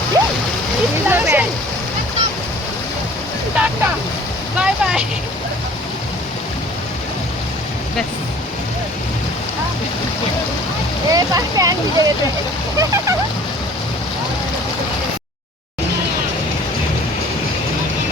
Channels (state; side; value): normal; both; correlation 0.50